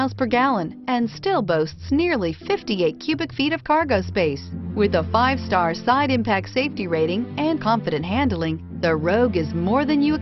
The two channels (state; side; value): identical; both; correlation 1.00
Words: per gallon and still boasts nearly 58 cubic feet of cargo space. With a 5-star side impact safety rating and confident handling, the Rogue is more than you